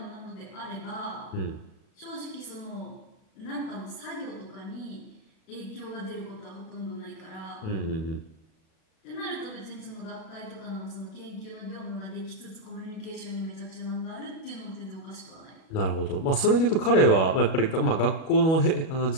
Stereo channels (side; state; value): right; late; 37 ms